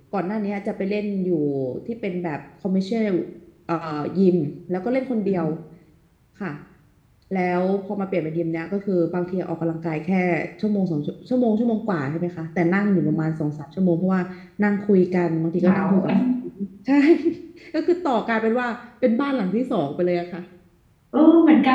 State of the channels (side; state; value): both; identical; correlation 1.00